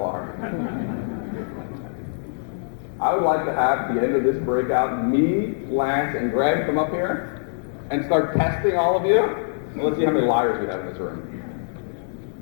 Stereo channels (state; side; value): silent; right; digital silence